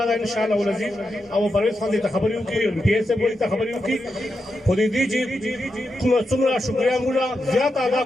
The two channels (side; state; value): both; normal; correlation 0.87